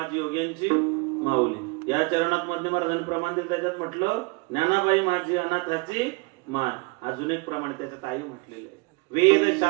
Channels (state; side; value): quieter; left; 28.0 dB